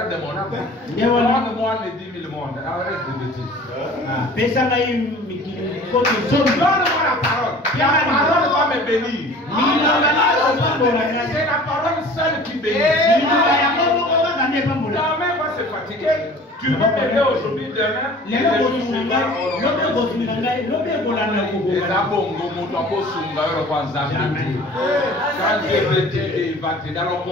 de mon âme. Demande-moi les 10 000 mondes. Arrête de bêtises. Donne-moi la parole. La parole va me bénir. C'est la parole seule qui bénit. La main va se fatiguer. Tu peux m'aider aujourd'hui, demain. Les abongos, mon topo sunga, le kwanzambi. Quand Dieu veut t'aider, il va t'aider. Alors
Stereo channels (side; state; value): both; normal; correlation 0.45